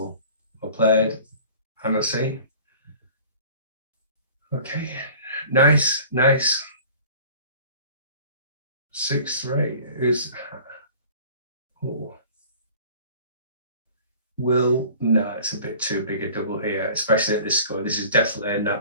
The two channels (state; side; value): inverted; both; correlation -0.46